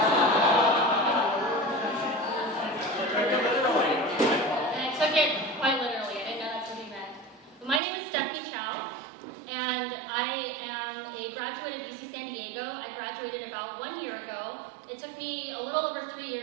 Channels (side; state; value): left; drops out; at 7.8 s